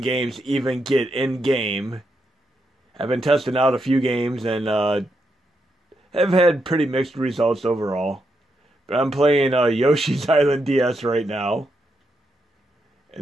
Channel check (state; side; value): normal; both; correlation 0.82